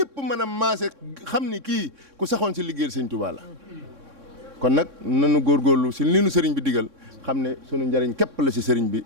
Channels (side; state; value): left; late; 3.6 ms